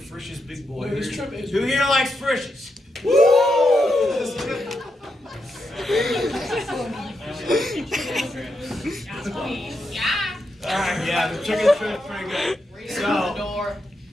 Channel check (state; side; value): normal; both; correlation 0.84